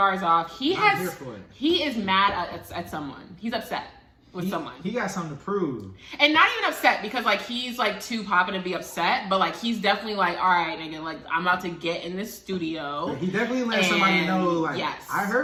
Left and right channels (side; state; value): both; identical; correlation 1.00